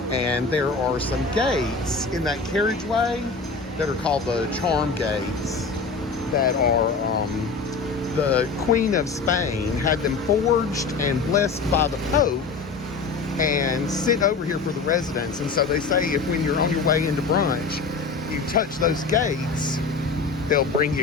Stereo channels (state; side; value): quieter; right; 4.5 dB